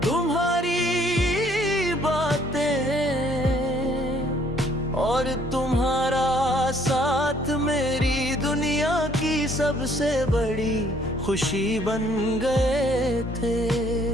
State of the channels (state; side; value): normal; both; correlation 0.62